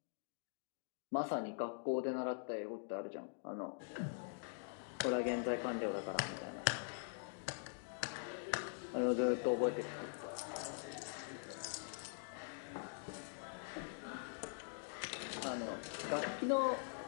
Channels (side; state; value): right; silent; digital silence